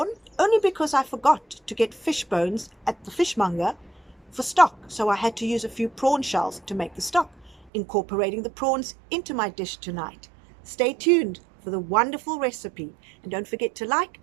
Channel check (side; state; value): left; drops out; at 7.7 s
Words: only because I forgot to get fish bones at the fishmonger for stock, so I had to use a few prawn shells to make the stock, incorporating the prawns into my dish tonight. Stay tuned for the wonderful recipe, and don't forget to like